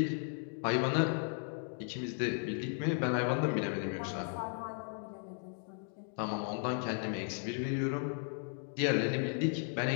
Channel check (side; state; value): right; silent; 54 dB below the other